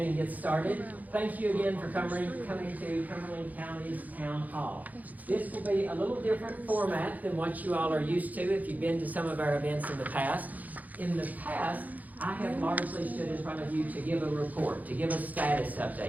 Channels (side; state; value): left; late; 0.080 ms